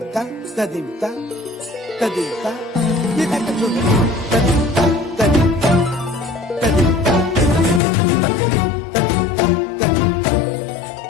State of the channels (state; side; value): drops out; right; at 7.8 s